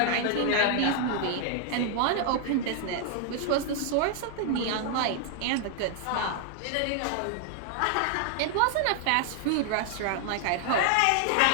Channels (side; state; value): both; different; correlation 0.00